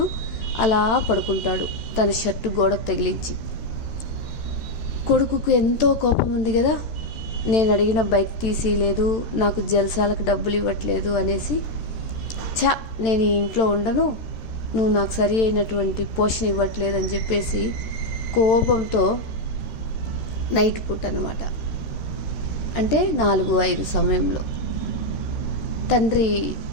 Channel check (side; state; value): right; late; 13 ms